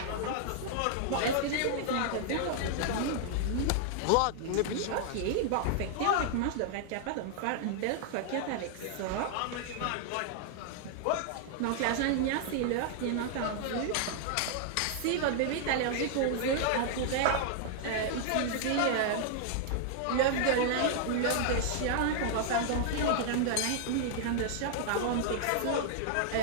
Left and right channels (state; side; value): different; both; correlation -0.01